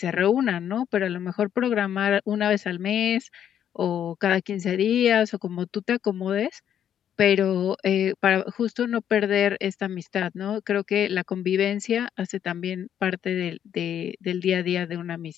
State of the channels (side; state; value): right; quieter; 9.6 dB